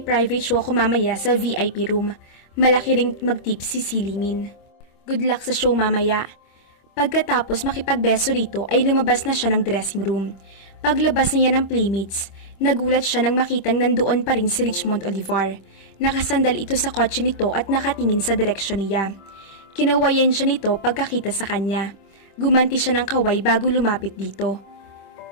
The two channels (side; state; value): right; late; 26 ms